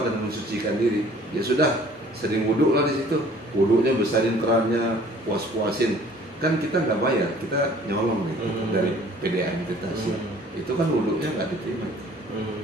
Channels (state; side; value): normal; both; correlation 0.53